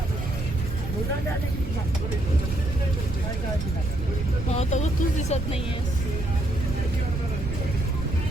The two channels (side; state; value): right; noise; rumble, 5 dB below the sound